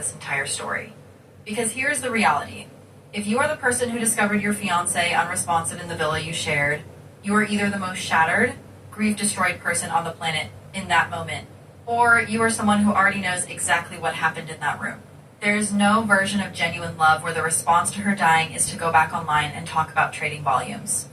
entire story. Because here's the reality. If you are the person who discovered your fiancé unresponsive in the villa you shared, you are either the most shattered, grief-destroyed person on the planet in that moment, or you are someone who already knows exactly what happened in that room. There is no version of genuine love where the response to her dying is to go back online and talk about trading volumes.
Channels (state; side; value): identical; both; correlation 1.00